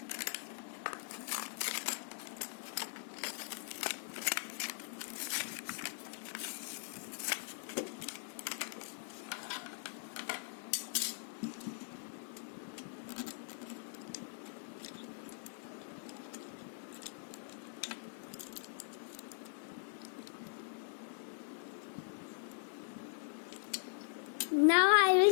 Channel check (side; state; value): right; silent; digital silence